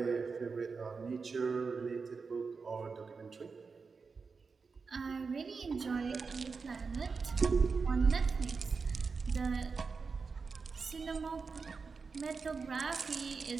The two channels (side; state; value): left; quieter; 4.9 dB